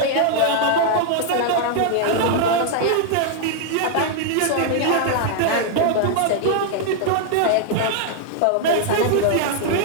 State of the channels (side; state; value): both; different; correlation 0.00